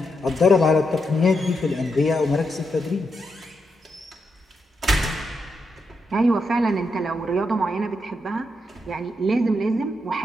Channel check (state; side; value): normal; both; correlation 0.83